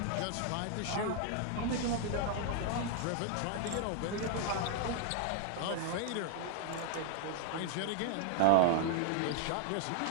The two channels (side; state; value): both; different; correlation -0.01